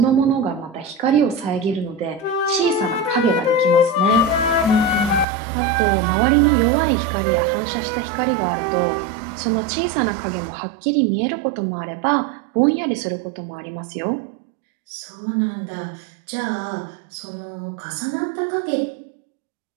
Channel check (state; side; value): drops out; left; at 5.2 s